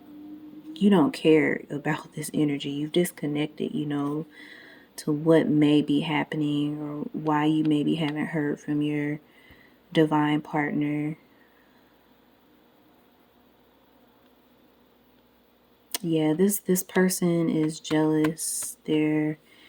you don't care about this energy. You've disconnected, to what may be happening or why you maybe haven't heard from your divine partner. Yeah, this person is jealous. They're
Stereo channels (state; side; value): identical; both; correlation 1.00